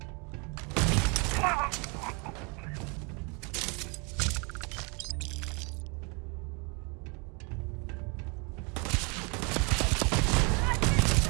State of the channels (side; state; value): left; quieter; 32.2 dB